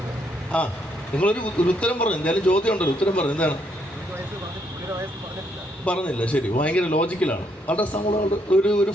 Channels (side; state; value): both; normal; correlation 0.73